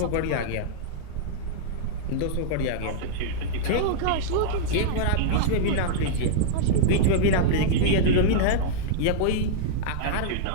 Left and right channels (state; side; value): different; both; correlation -0.02